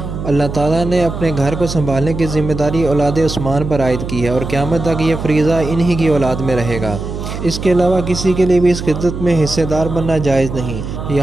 اللہ تعالیٰ نے اپنے گھر کو سنبھالنے کی ذمہ داری اولاد عثمان پر عائد کی ہے اور قیامت تک یہ فریضہ انہی کی اولاد میں رہے گا۔ اس کے علاوہ کسی کے لیے بھی اس خدمت میں حصہ دار بننا جائز نہیں،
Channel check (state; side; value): noise; right; hum, 7 dB below the sound